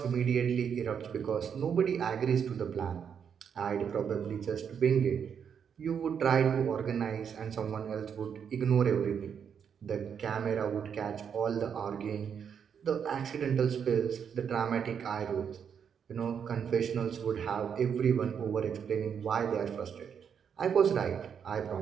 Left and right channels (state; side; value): quieter; left; 7.5 dB